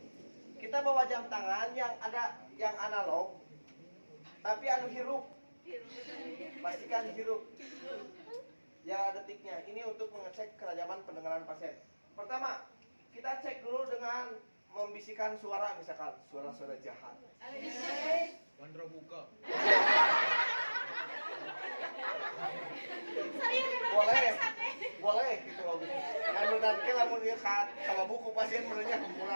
Kita bawa jam tangan yang analog, tapi hirup. Pastikan hirup. Ya detiknya. Ini untuk mengecek kerajaman pendengaran pasien. Pertama, kita cek dulu dengan membisikkan suara, misalkan suara-suara jahat. Bandra buka. Boleh gitu loh. Anu nanti lamun ieu kalau buku pasien menurutnya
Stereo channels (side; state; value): both; inverted; correlation -1.00